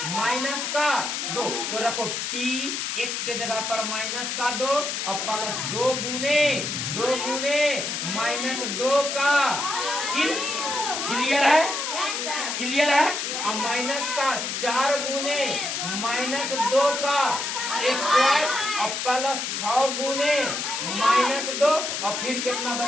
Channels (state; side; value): noise; left; hiss, 3 dB below the sound